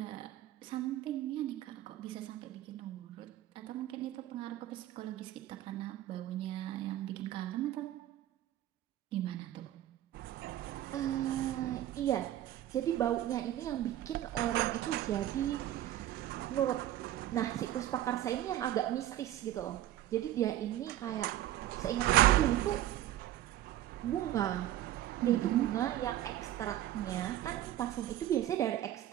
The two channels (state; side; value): quieter; left; 13.2 dB